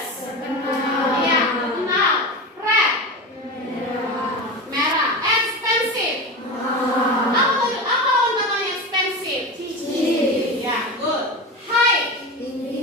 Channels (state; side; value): normal; both; correlation 0.24